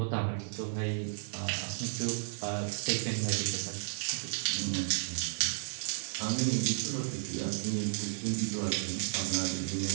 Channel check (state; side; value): silent; left; 56 dB below the other